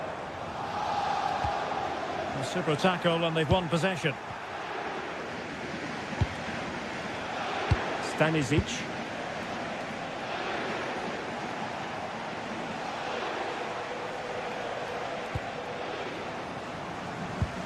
A super tackle and they've won possession. Stanisic.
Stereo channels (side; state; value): both; identical; correlation 1.00